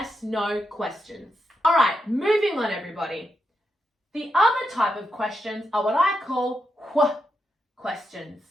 questions. All right, moving on, everybody. The other type of questions are what I call wh questions.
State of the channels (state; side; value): normal; both; correlation 0.84